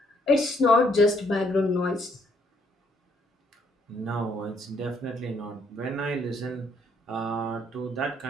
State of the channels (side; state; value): both; normal; correlation 0.69